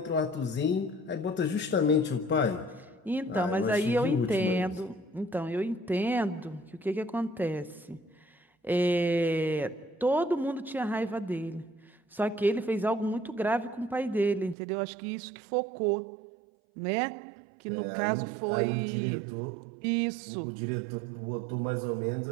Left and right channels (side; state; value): left; drops out; at 14.6 s